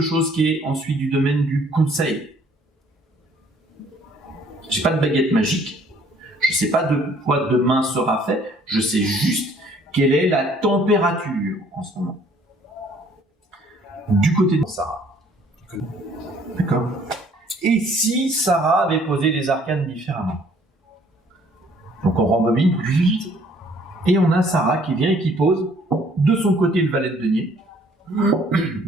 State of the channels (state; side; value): normal; both; correlation 0.60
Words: qui est ensuite du domaine du conseil. J'ai pas de baguette magique, je sais pas de quoi demain sera fait, je sais juste quelle est la température en ce moment. Du côté de Sarah. D'accord? Et si Sarah avait posé les arcanes différemment? Donc on rembobine, et on a Sarah qui vient et qui pose de son côté le valet de denier,